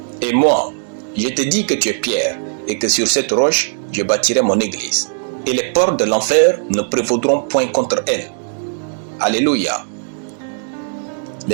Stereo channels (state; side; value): silent; left; digital silence